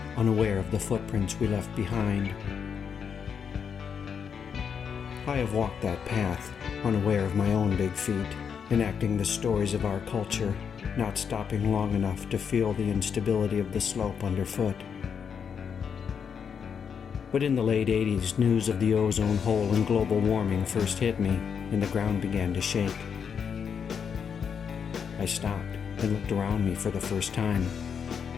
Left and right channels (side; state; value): right; quieter; 7.0 dB